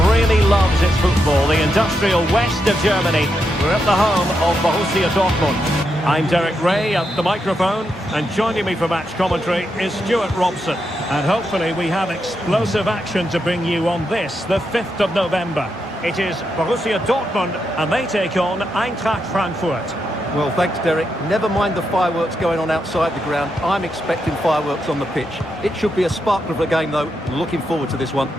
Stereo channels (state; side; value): normal; both; correlation 0.83